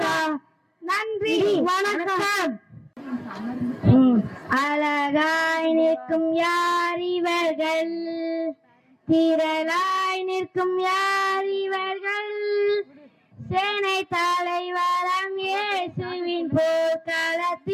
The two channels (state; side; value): identical; both; correlation 1.00